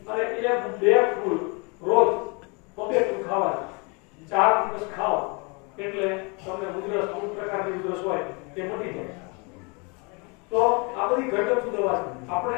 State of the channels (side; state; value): right; quieter; 31.3 dB